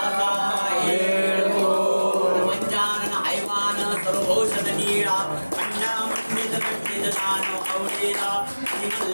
येळकोट. पंचानन हैवान सर्वौषध नीळा अंडामंडित कंडितदान अवलेला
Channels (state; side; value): inverted; both; correlation -1.00